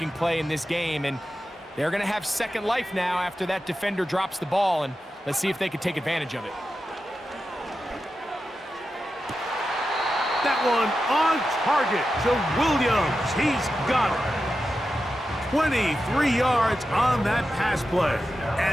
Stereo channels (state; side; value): normal; both; correlation 0.91